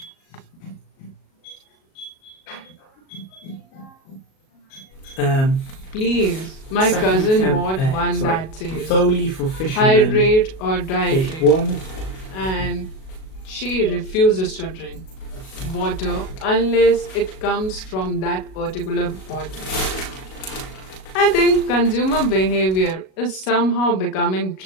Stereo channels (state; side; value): late; right; 37 ms